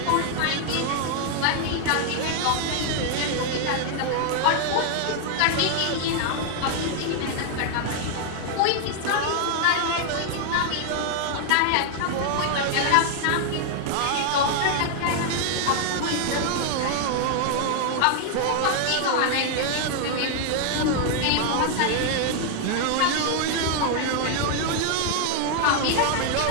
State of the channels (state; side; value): different; both; correlation 0.00